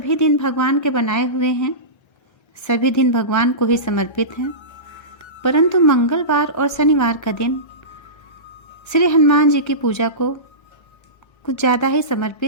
दिन भगवान के बनाए हुए हैं, सभी दिन भगवान को ही समर्पित हैं, परंतु मंगलवार और शनिवार का दिन श्री हनुमान जी की पूजा को कुछ ज़्यादा ही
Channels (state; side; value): late; right; 1.3 ms